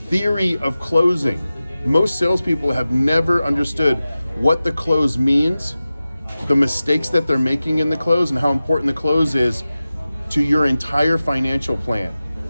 of closing. Most salespeople have never understood what the close means, the mistakes that they're making in the close, and how important the close is to your entire financial plan.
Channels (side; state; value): both; inverted; correlation -0.95